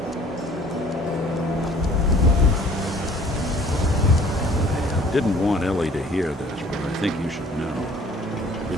Didn't want Ellie to hear this, but I think you should know.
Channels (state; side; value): normal; both; correlation 0.53